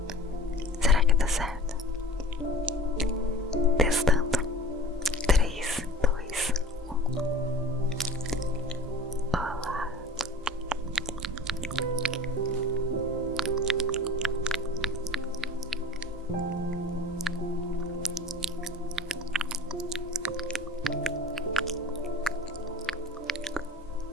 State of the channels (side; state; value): both; normal; correlation 0.42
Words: Será que dá certo? Testando. 3, 2, 1. Olá.